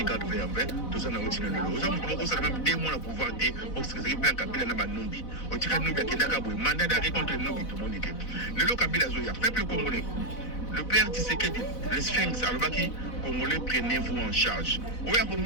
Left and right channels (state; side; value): late; right; 4.0 ms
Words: garde vers en fait, tout ça n'a pas de l'eau. Ça a même 2 mois à pouvoir dire, parce que c'est bien Kabila n'a pas Numbi. Au Tika Numbi, qui n'a pas mandat d'arrêt contre Numbi, tout le monde était. Le lot Kabila Zoya, peuple congolais. Le père Tshisekedi, le Sphinx, Alobaki, Congolais, prenez-vous en charge. Oya